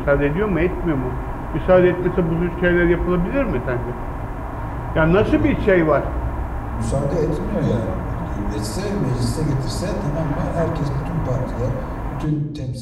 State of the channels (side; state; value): both; identical; correlation 1.00